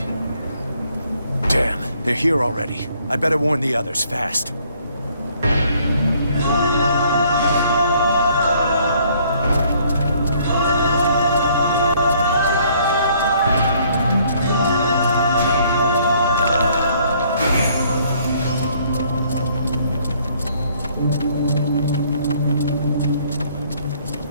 Damn, they're here already. I better warn the others fast.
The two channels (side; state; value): both; inverted; correlation -0.62